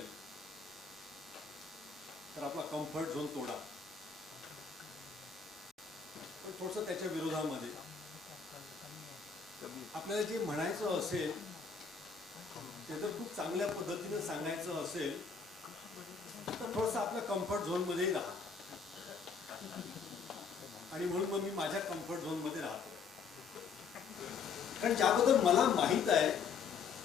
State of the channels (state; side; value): quieter; right; 5.7 dB